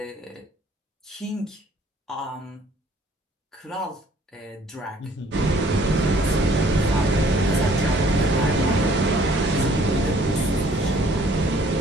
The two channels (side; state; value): both; normal; correlation 0.59